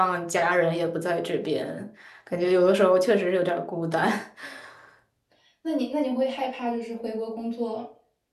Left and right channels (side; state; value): both; identical; correlation 1.00